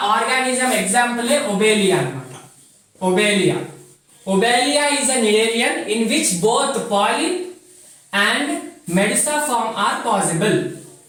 ఆర్గానిజం ఎగ్జాంపుల్ ఒబేలియా అన్నమాట. ఒబేలియా is an Nidarian in which both polyp and medusa form are possible.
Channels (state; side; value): identical; both; correlation 1.00